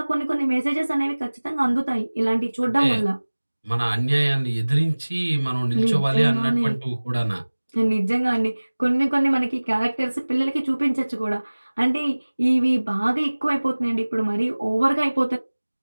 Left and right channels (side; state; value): both; inverted; correlation -1.00